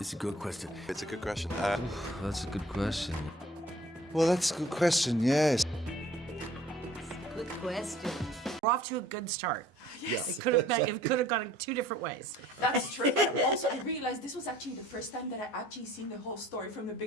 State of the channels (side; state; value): both; normal; correlation 0.53